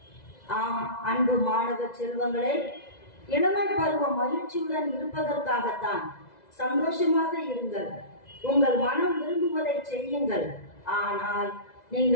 ஆம் அன்பு மாணவ செல்வங்களே, இளமை பருவம் மகிழ்ச்சியுடன் இருப்பதற்காகத்தான். சந்தோஷமாக இருங்கள், உங்கள் மனம் விரும்புவதை செய்யுங்கள். ஆனால்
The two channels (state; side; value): late; right; 2.0 ms